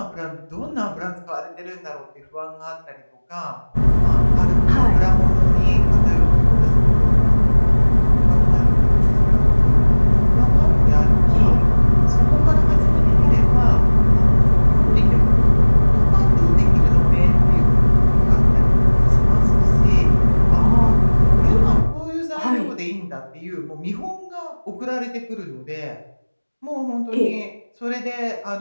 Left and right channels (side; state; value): both; inverted; correlation -1.00